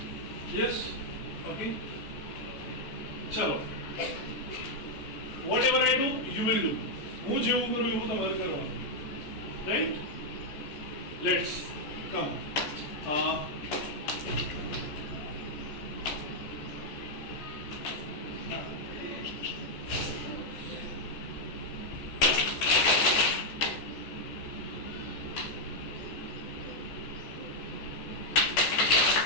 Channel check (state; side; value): late; right; 14 ms